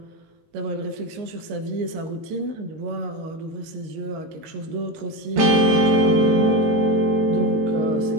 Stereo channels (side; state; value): left; late; 19 ms